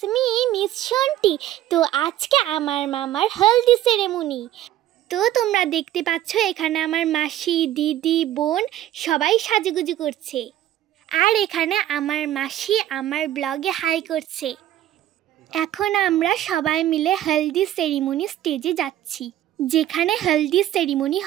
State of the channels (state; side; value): quieter; left; 13.0 dB